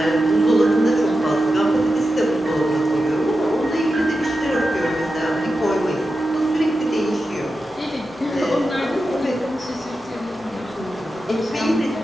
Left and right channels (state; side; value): normal; both; correlation 0.90